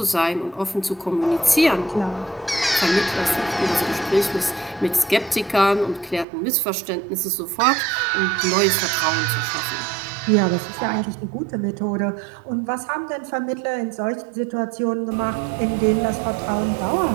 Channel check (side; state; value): left; drops out; at 6.2 s